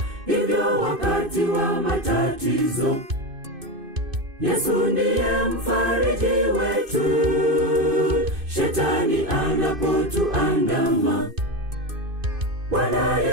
Hivyo wakati wa matatizo, Yesu ndiye mfariji wetu, shetani anapotuandama. Bwana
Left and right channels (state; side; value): late; left; 2.5 ms